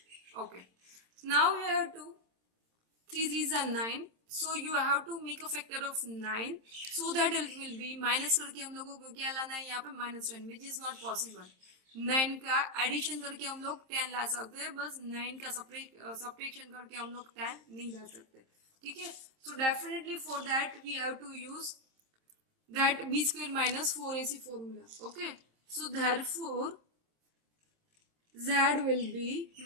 Okay, now we have to 3 3s are 9, so you have to make a factor of 9, so that it will be minus करके हम लोगों को क्या लाना है यहाँ पे -10, which is not possible. 9 का एडिशन करके हम लोग 10 ला सकते हैं, बस 9 का सब्ट्रैक्शन करके हम लोग 10 नहीं ला सकते. ठीक है, so definitely for that we have to use that b square minus 4ac formula. Okay, so therefore z will be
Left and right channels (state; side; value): late; left; 26 ms